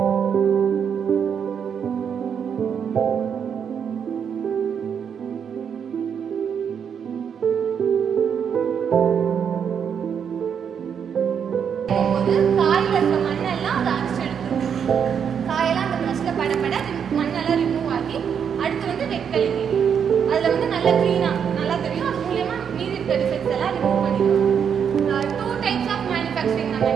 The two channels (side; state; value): left; quieter; 7.6 dB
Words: காயில் இருக்க மண்ணெல்லாம் அதை அரைச்சி எடுத்துரும். காயெல்லாம் அந்த ப்ரஷ்ல படப்பட மண்ணெல்லாம் ரிமூவ் ஆகி அடுத்து வந்து வெட்களி அதில் வந்து நல்லா க்ளீனாக நல்லா தெரியும். அது மூலயமா மீதி இருக்க டிஃபெக்ட்ஸ் எல்லாம் ரிமூவ் பண்ணிடுவோம். 2 types ஆஃப் மேனுஃபேக்சரிங் நம்ம